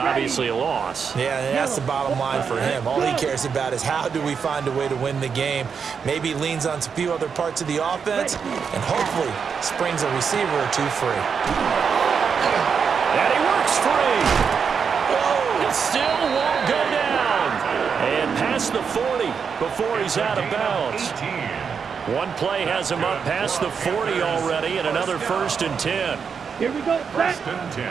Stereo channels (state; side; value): quieter; left; 6.3 dB